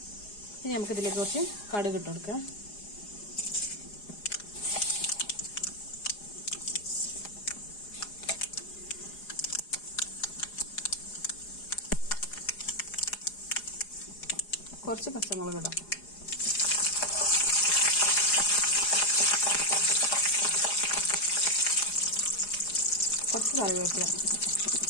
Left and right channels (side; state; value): right; late; 4.8 ms